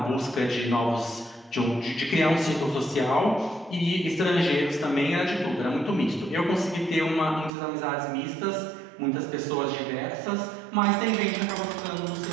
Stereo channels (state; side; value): drops out; left; at 7.5 s